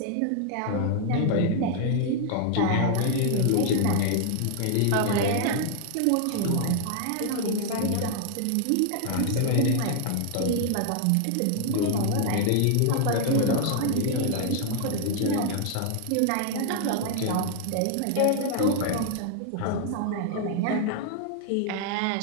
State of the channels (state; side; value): different; both; correlation 0.00